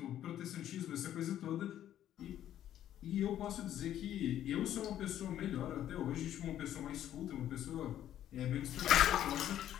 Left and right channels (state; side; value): quieter; right; 11.5 dB